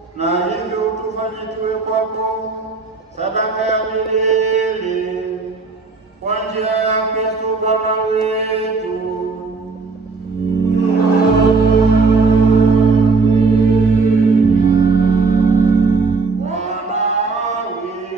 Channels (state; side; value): quieter; left; 4.2 dB